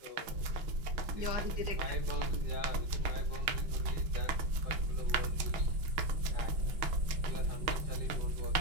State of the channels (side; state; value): left; late; 6.3 ms